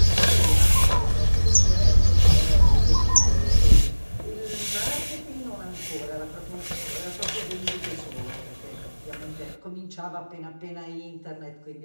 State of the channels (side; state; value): both; inverted; correlation -1.00